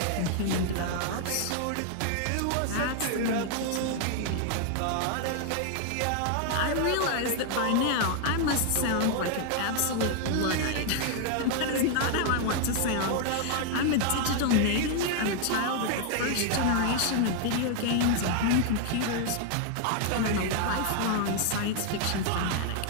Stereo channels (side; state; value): both; different; correlation 0.00